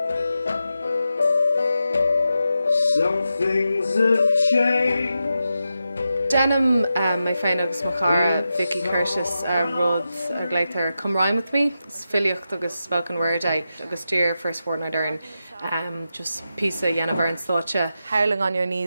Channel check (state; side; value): inverted; both; correlation -0.89